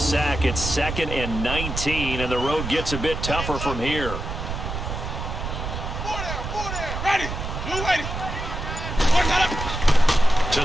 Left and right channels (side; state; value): right; noise; rumble, 5 dB below the sound